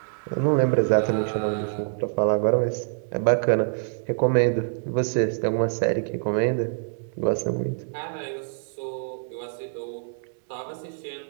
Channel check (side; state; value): left; silent; digital silence